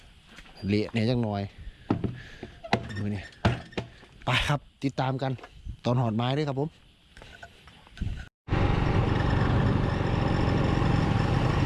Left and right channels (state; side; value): identical; both; correlation 1.00